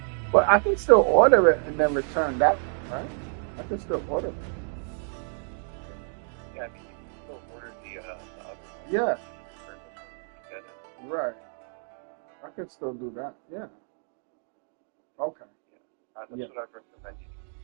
But I can still order it and then return that, right? I can still order it. Yeah, I mean, you can still order the other one. Yeah. Get it. Right. I can still do that. Yeah. Okay. That's what I'd recommend you.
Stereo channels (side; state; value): left; silent; 59 dB below the other